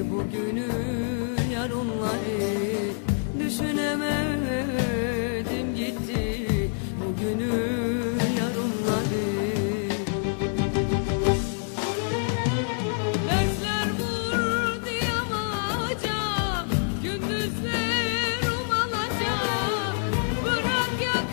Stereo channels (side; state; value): right; silent; digital silence